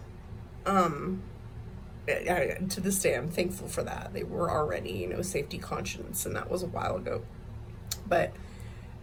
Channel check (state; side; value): identical; both; correlation 1.00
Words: To this day, I'm thankful for that. They were already, you know, safety conscious, and that was a while ago. But